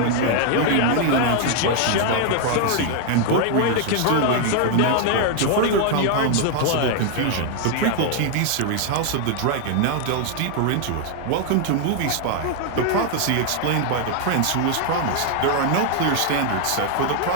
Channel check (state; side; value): different; both; correlation 0.00